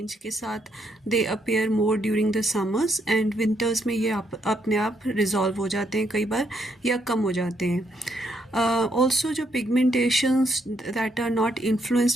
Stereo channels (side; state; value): both; normal; correlation 0.75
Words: के साथ they appear more during the summers and winters में ये अपने आप रिजॉल्व हो जाते हैं कई बार या कम हो जाते हैं. ऑल्सो जो pigmentations that are not